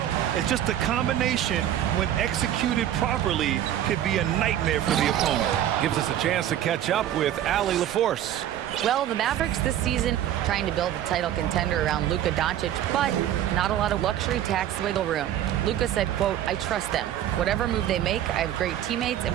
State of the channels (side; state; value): left; quieter; 11.5 dB